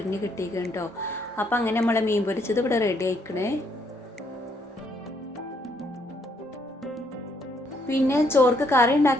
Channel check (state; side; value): normal; both; correlation 0.71